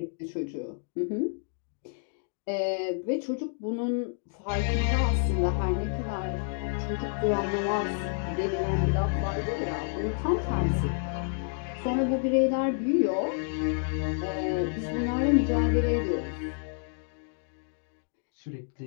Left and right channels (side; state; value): right; silent; 58 dB below the other